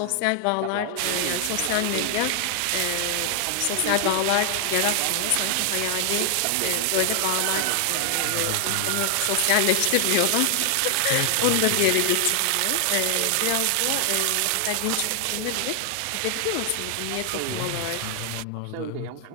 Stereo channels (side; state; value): both; different; correlation 0.00